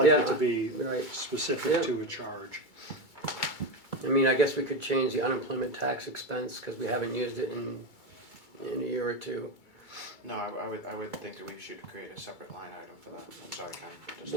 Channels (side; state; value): right; late; 2.3 ms